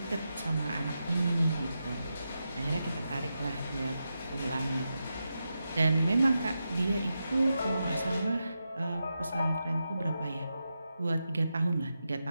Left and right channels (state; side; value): inverted; both; correlation -0.88